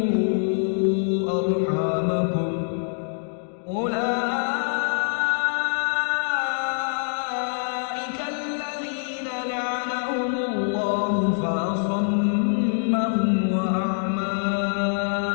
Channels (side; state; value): right; silent; digital silence